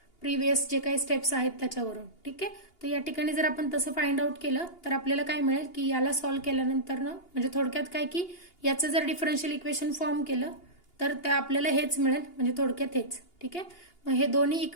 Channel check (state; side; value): late; right; 2.8 ms